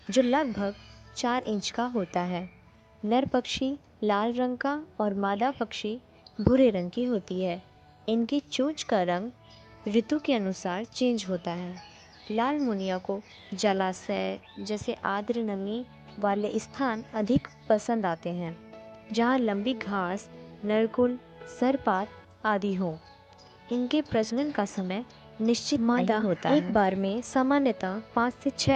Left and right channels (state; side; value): identical; both; correlation 1.00